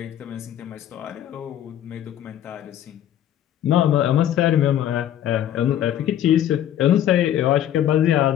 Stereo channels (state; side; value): quieter; right; 11.1 dB